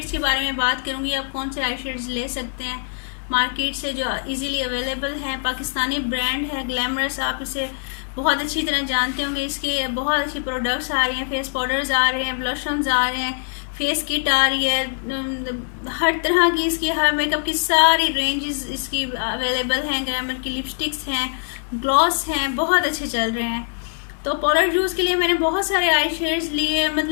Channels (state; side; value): silent; right; digital silence